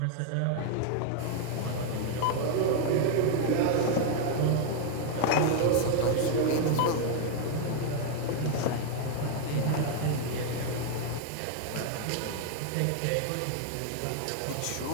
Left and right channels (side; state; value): both; different; correlation 0.00